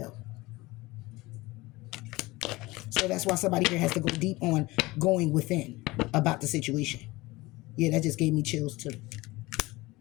So that's why somebody here has to go deep on going within about the situation. Yeah, that just gave me chills too.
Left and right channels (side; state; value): right; quieter; 20.8 dB